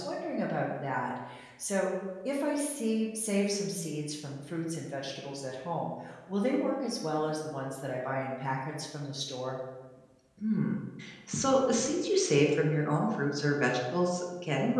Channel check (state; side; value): identical; both; correlation 1.00